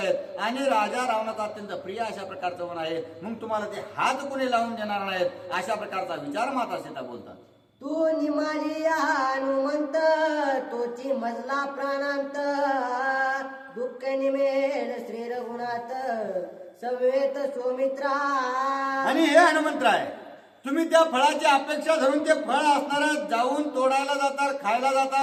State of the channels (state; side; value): identical; both; correlation 1.00